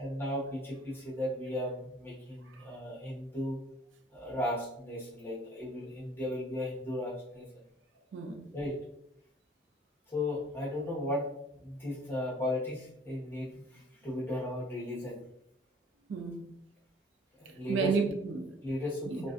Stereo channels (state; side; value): normal; both; correlation 0.53